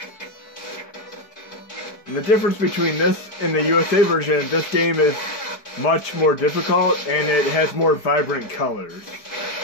And the difference between this and the USA version, this game is much more difficult and it has more vibrant colors.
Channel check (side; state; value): right; late; 4.7 ms